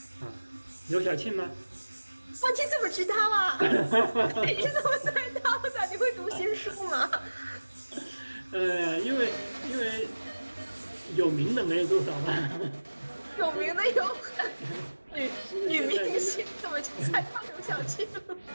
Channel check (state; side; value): inverted; both; correlation -1.00